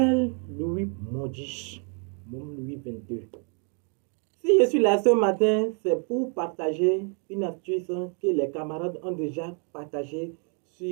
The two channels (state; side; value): quieter; left; 40.0 dB